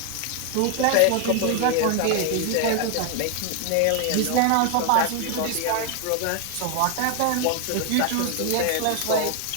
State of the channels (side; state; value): both; different; correlation 0.00